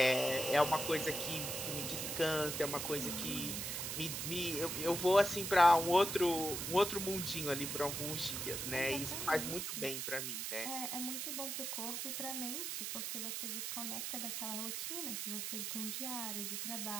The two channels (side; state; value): right; noise; hiss, 3 dB below the sound